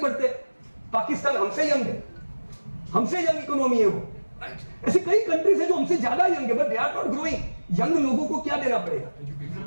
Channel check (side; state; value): both; inverted; correlation -1.00